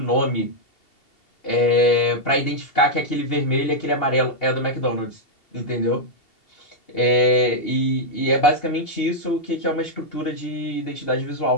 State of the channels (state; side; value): late; right; 2.8 ms